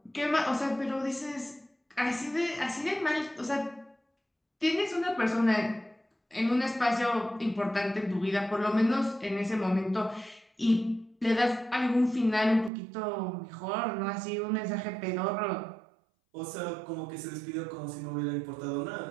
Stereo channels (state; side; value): drops out; left; at 12.7 s